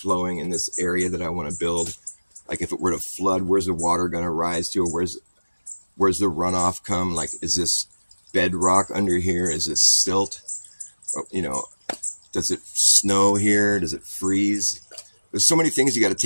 in this area that I want to build? Like if it were to flood, where's the water going to rise to? Where's the runoff come? Like, is this bedrock under here? Is this silt? Does it snow here? Does it freeze? There's so many things you got to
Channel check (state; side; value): inverted; both; correlation -1.00